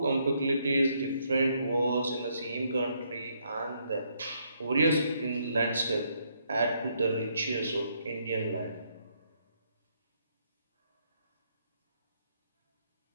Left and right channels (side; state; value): both; inverted; correlation -0.73